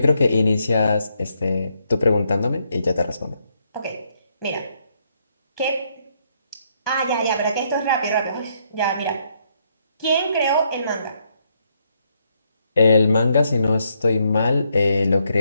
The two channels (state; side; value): inverted; both; correlation -0.75